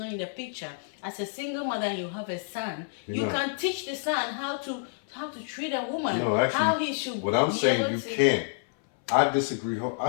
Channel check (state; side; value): silent; right; 59 dB below the other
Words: in the picture, as a single mother and you have a son, you can teach the son how to treat a woman. No, actually, how he should what I'm be saying, able you to- can't. I disagree. I